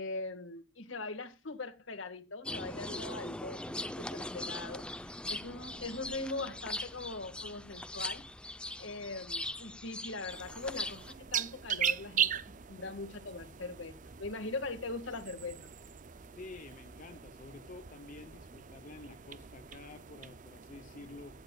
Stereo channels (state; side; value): normal; both; correlation 0.11